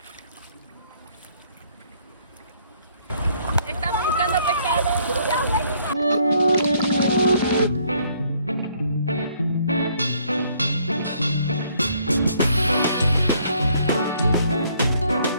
Estamos buscando pescado.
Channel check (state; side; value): inverted; both; correlation -0.65